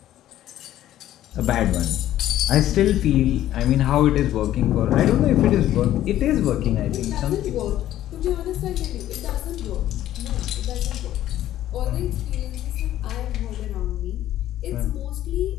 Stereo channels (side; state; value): right; quieter; 12.9 dB